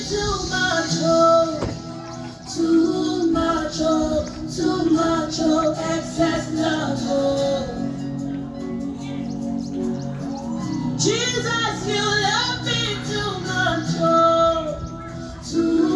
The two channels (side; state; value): both; identical; correlation 1.00